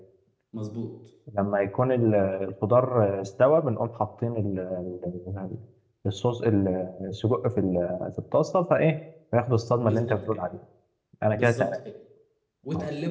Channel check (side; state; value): both; identical; correlation 1.00